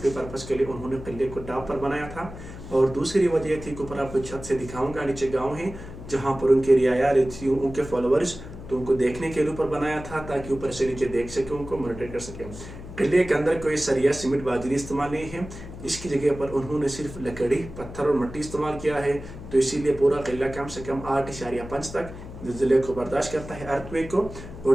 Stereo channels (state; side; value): noise; left; hum, 13 dB below the sound